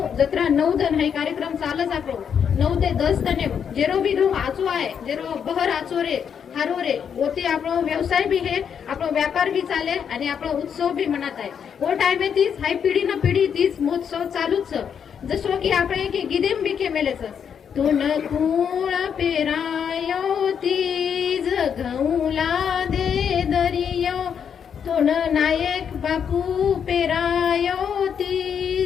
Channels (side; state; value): right; quieter; 7.6 dB